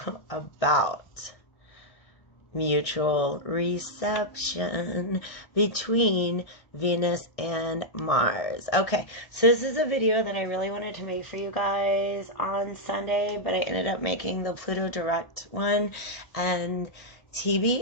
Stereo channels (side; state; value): right; late; 1.6 ms